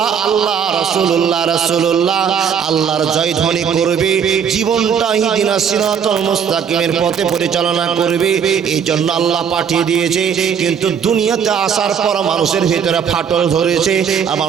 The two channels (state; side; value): quieter; left; 7.4 dB